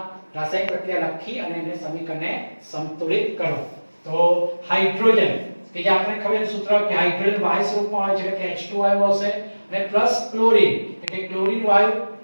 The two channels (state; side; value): inverted; both; correlation -1.00